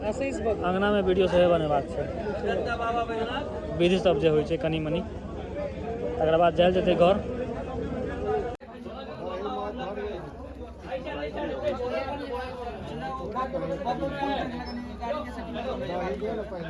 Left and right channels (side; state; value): both; identical; correlation 1.00